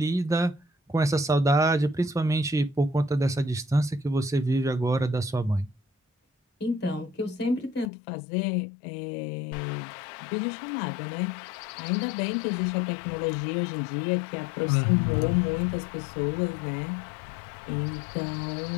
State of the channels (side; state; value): right; drops out; at 7.9 s